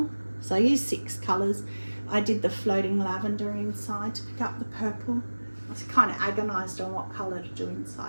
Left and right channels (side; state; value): both; inverted; correlation -1.00